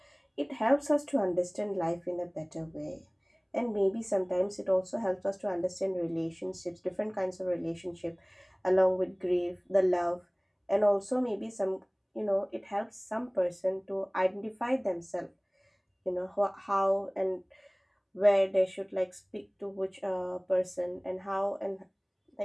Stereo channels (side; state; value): both; identical; correlation 1.00